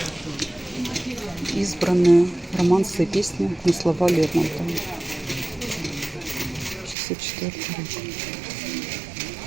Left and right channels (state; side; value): drops out; left; at 7.0 s